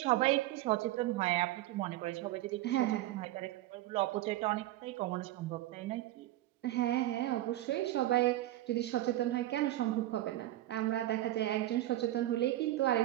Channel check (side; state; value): left; quieter; 15.3 dB